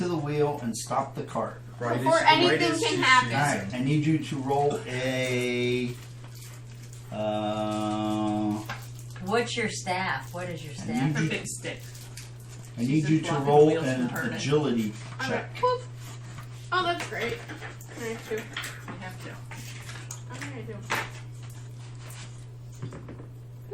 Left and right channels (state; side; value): identical; both; correlation 1.00